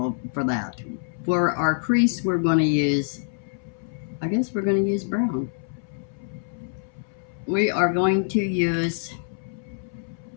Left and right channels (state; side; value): silent; right; 59 dB below the other